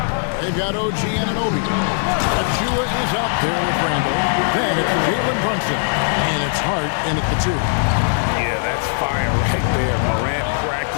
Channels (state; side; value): silent; right; 66 dB below the other